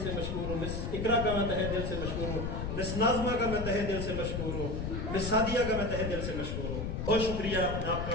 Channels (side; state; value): left; noise; rumble, 3 dB below the sound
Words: سے مشکور ہوں. مس اقرا کا میں تہہ دل سے مشکور ہوں. مس ناظمہ کا میں تہہ دل سے مشکور ہوں. مس سعدیہ کا میں تہہ دل سے مشکور ہوں. بہت شکریہ، میں آپ